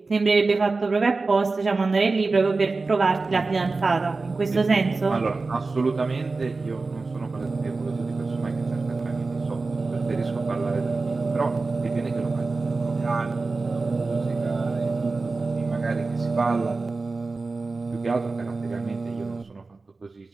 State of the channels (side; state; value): left; quieter; 3.8 dB